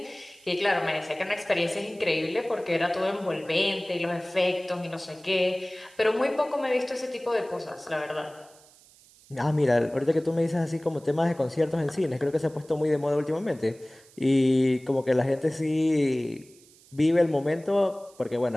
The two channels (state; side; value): noise; right; hiss, 26 dB below the sound